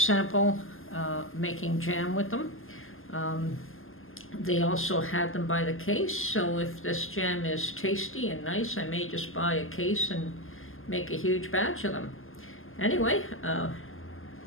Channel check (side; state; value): right; late; 0.60 ms